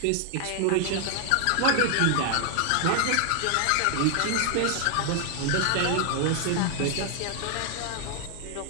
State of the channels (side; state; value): both; different; correlation 0.00